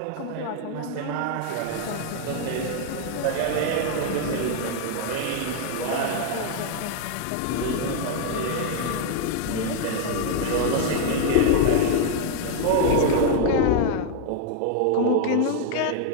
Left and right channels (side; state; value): both; different; correlation 0.00